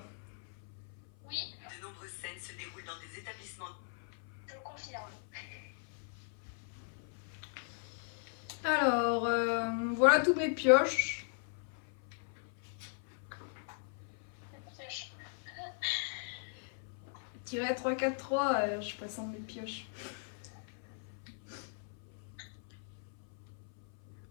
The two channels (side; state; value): right; silent; 52 dB below the other